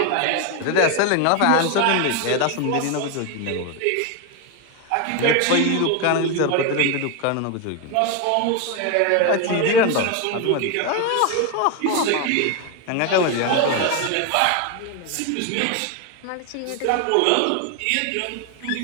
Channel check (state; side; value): different; both; correlation 0.01